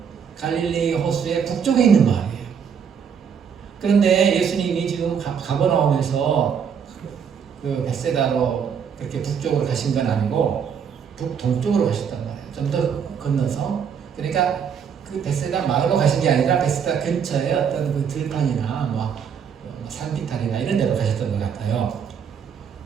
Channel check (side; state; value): left; quieter; 7.2 dB